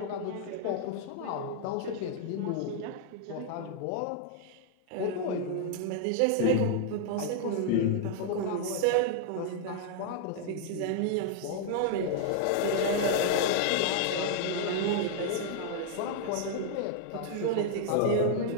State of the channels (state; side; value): different; both; correlation 0.00